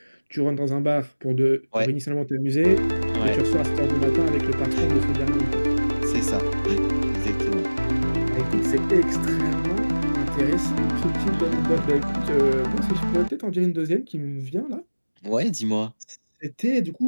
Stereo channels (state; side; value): inverted; both; correlation -1.00